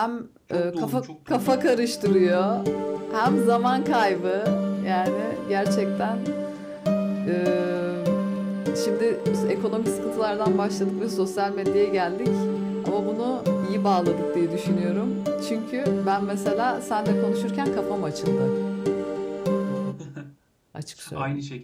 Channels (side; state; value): both; identical; correlation 1.00